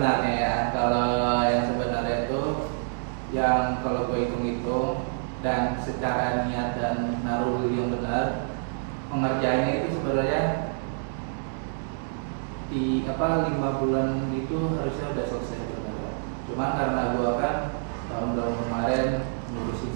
ya, kalau yang sebenarnya itu yang kalau gue hitung-hitung dan secara niat dan naruh diri yang benar, pengerjaannya itu sebenarnya di 5 bulan itu harusnya udah selesai sebenarnya. Cuma karena gue kan tahun-tahun kemarin ngurusin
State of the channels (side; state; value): left; silent; digital silence